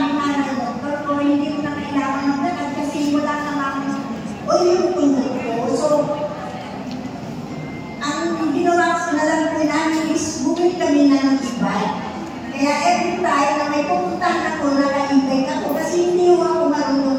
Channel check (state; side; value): identical; both; correlation 1.00